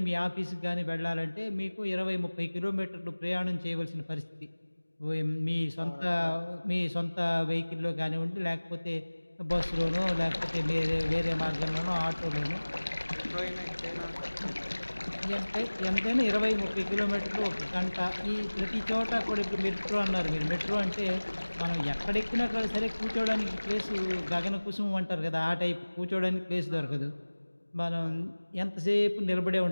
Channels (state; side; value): inverted; both; correlation -1.00